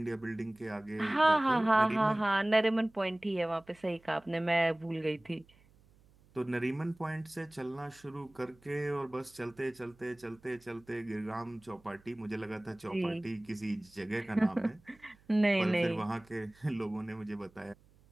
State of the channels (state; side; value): noise; right; hum, 29 dB below the sound